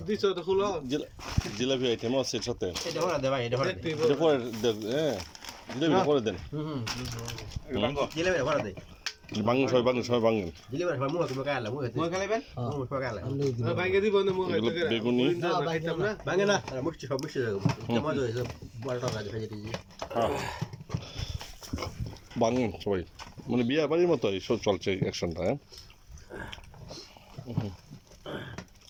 জিলাপি আইটেম আছে এর সাথে, এটা পরে হ্যাঁ জিলাপিটা করে দেন। ভাঙেন সবাই, ভাঙেন সবাই, ভাঙেন। বেগুনি ভাঙেন সবাই, মানে বিয়ে বাড়ির মতো এইসব চলছে অ্যাকশনটা। হ্যাঁ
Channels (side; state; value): both; identical; correlation 1.00